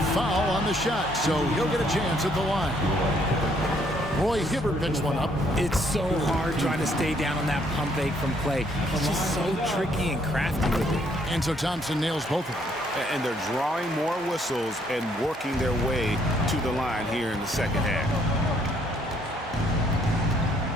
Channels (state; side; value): normal; both; correlation 0.67